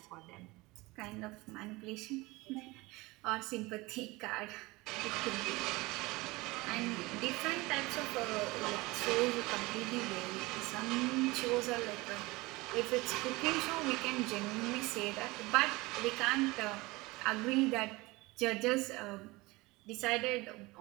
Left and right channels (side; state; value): left; quieter; 22.3 dB